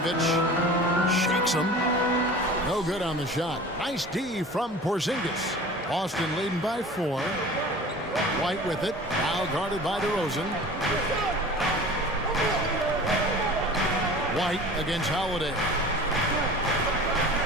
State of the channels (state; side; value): normal; both; correlation 0.40